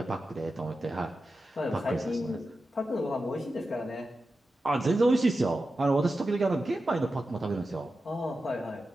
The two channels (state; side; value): normal; both; correlation 0.91